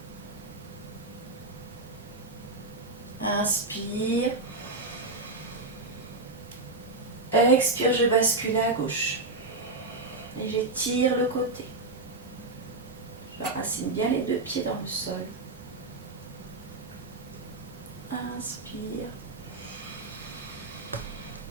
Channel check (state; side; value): quieter; left; 3.2 dB